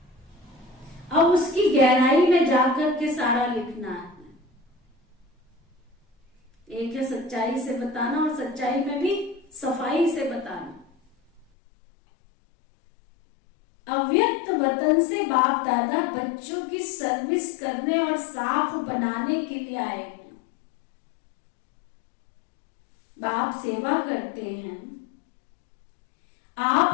अब उसकी गहराई में जाकर के सारा लिखना है। एक है सच्चाई से बताना और सच्चाई में भी सफाई से बताना। अव्यक्त वतन से बाप दादा बच्चों की सर्विस करने और साफ बनाने के लिए आए हैं। बाप सेवा करते हैं। आप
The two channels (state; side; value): drops out; right; at 11.5 s